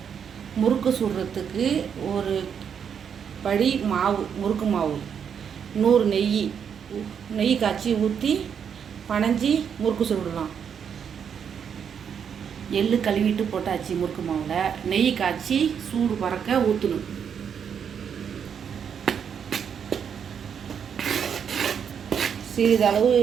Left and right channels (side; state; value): left; quieter; 7.6 dB